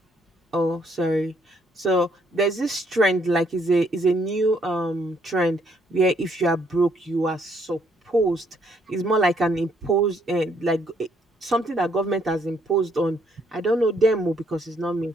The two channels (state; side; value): normal; both; correlation 0.69